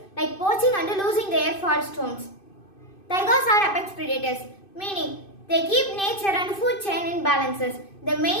like poaching and losing their forest homes. Tigers are apex predators, meaning they keep nature and food chain in balances. The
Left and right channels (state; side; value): late; right; 2.6 ms